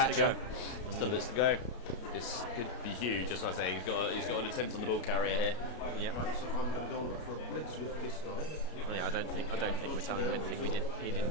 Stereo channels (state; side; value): late; right; 33 ms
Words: catcher. go. Still bits to go. This could be huge. Just like I say, he's got an attempt on the ball carrier here. Yeah. Right, so I'm going to go on for a blitz with this guy. Yeah, I don't think we're telling him anything he didn't